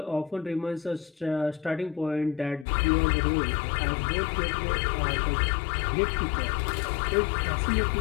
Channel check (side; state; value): right; drops out; at 2.7 s